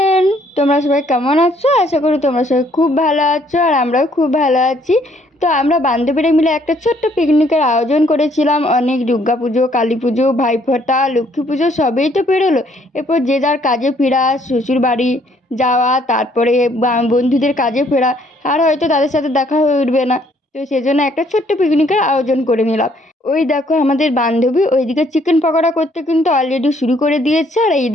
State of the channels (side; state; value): both; normal; correlation 0.65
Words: তোমরা সবাই কেমন আছো? আশা করি তোমরা সবাই খুব ভালো আছো আর আমরাও খুব ভালো আছি। তো আমরা বান্ধবীরা মিলে একটা ছোট্ট পিকনিকের আয়োজন করেছিলাম। অনেক দুর্গা পুজো, কালী পুজো, ভাইফোঁটা, লক্ষ্মী পুজো সবই তো পেরোলো। এরপর যে যার কাজে ফেরা, শ্বশুর বাড়ি যাওয়া, তারপরে বন্ধুদের কাজে ফেরা, আর হয়তো তাদের সাথে দেখা হয়ে উঠবে না। তো সেজন্য একটা ছোট্ট পিকনিকের আয়োজন করে নিলাম। ওই দেখো আমাদের বান্ধবী ওইদিকে চিকেন পকোড়া করতে কিন্তু অলরেডি শুরু করে দিয়েছে, আর